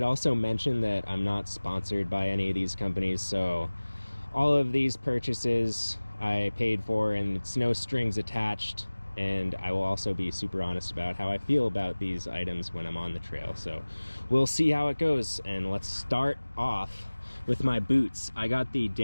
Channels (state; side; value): inverted; both; correlation -1.00